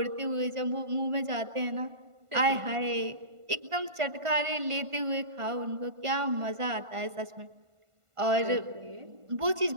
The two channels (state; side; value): late; left; 1.5 ms